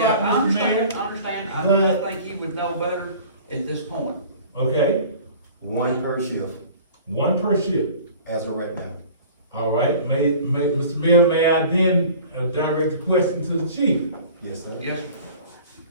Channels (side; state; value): both; inverted; correlation -0.45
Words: I Mr. Mayor. understand. I But- think you would know better at this point. Okay, One per shift, one per shift. as of right now. All right, Mr. Mayor, may I then direct the question to the chief? Yes, sir. Yes, sir.